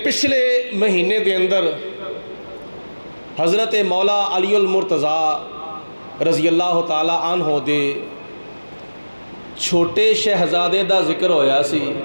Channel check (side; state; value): both; inverted; correlation -1.00